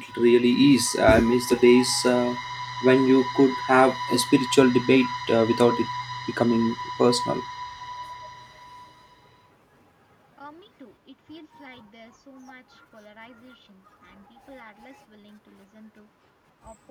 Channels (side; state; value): both; identical; correlation 1.00